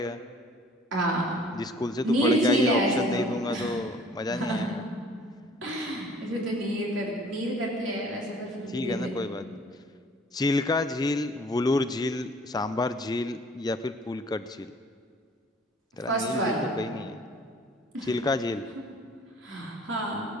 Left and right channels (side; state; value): both; normal; correlation 0.53